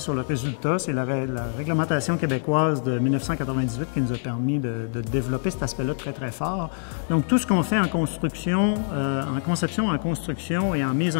le résultat. C'est la réglementation québécoise de 1998 qui nous a permis de développer cet aspect-là très, très fort. Donc, tout ce qu'on fait en construction, en conception, en construction et en mise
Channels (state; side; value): silent; right; digital silence